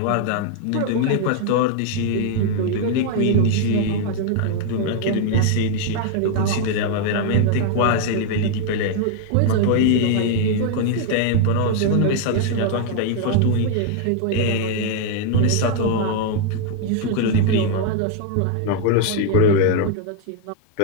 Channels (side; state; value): both; different; correlation 0.00